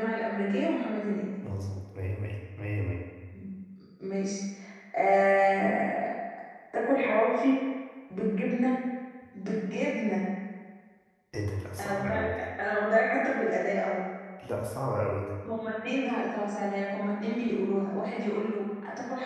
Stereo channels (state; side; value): identical; both; correlation 1.00